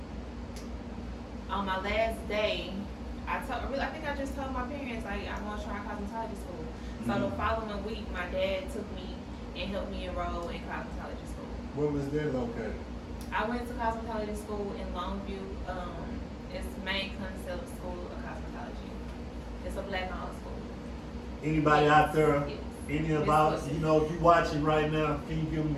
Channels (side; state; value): both; identical; correlation 1.00